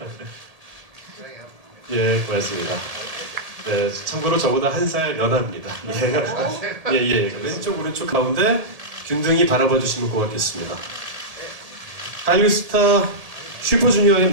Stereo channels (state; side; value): late; left; 1.8 ms